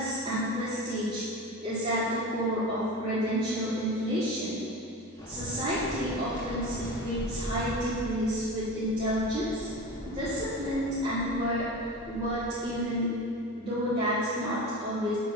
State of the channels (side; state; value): both; normal; correlation 0.29